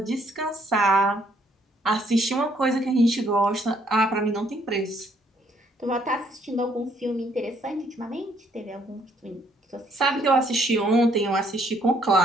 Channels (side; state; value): both; normal; correlation 0.67